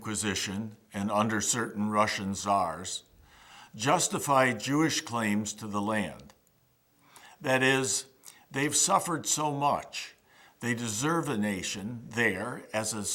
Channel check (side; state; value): both; identical; correlation 1.00